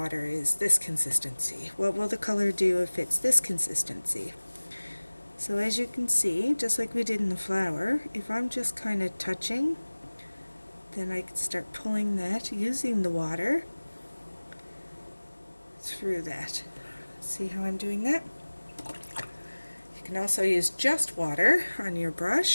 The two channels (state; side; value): inverted; both; correlation -1.00